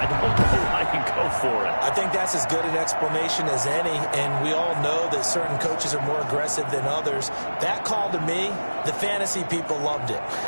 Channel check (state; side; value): inverted; both; correlation -1.00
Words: don't know I can go for it. I think that's as good an explanation as any, and we all know that certain coaches are more aggressive than others. That call to me, the fantasy people loved it,